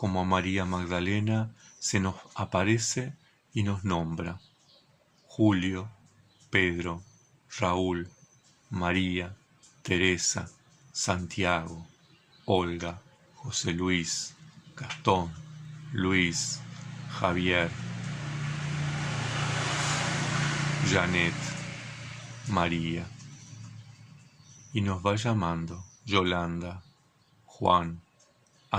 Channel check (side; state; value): both; identical; correlation 1.00